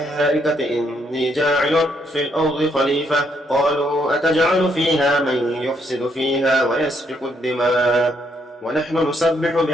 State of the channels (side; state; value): both; normal; correlation 0.73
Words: إني جاعل في الأرض خليفة قالوا أتجعل فيها من يفسد فيها ويسفك الدماء ونحن نسبح